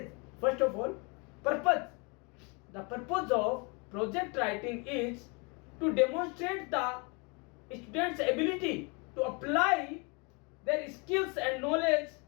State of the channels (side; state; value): right; quieter; 31.4 dB